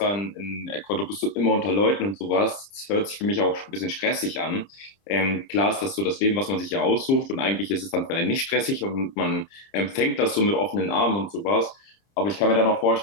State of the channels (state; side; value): late; right; 30 ms